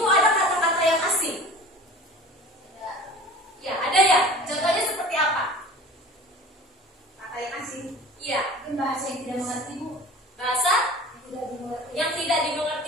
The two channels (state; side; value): normal; both; correlation 0.40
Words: ada kata-kata yang asing? Ya, ada ya. Contohnya seperti apa? Kata yang asing. Iya. Mungkin bahasa yang tidak mengerti, Bu. Bahasa Tidak dimengerti. yang tidak